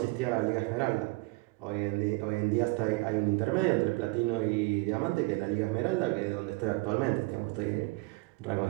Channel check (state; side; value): quieter; left; 24.6 dB